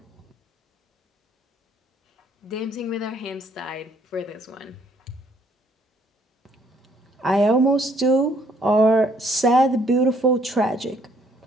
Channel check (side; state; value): both; normal; correlation 0.65